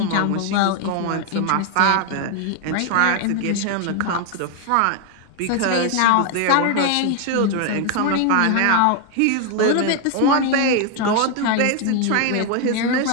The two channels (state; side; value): different; both; correlation 0.00